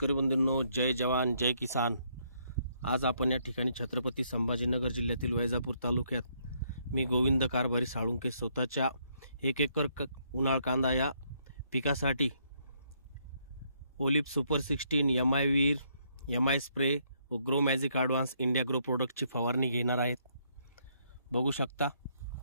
बंधूंनो, जय जवान जय किसान। आज आपण या ठिकाणी छत्रपती संभाजीनगर जिल्ह्यातील वैजापूर तालुक्यात मी गोविंद कारभारी साळुंके स्वतःच्या 1 एकर उन्हाळ कांदा या पिकासाठी ओलिप सुपर 16 MI वीर MI स्प्रे व grow magic advance India grow प्रोडक्टची फवारणी घेणार आहेत। बघू शकता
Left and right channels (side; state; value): both; inverted; correlation -0.71